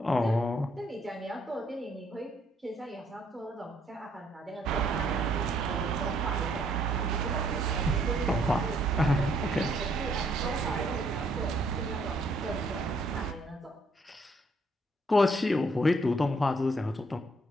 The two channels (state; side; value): normal; both; correlation 0.68